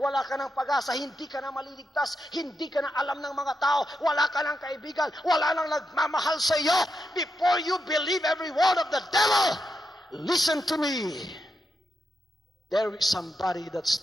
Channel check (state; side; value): normal; both; correlation 0.85